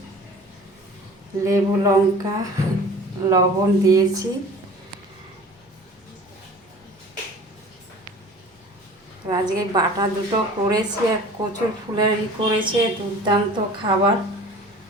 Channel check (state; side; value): normal; both; correlation 0.43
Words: লেবু লঙ্কা লবণ দিয়েছি। আজকে বাটা দুটো করেছি আর কচুর ফুলের করেছে, দুর্দান্ত খাবার।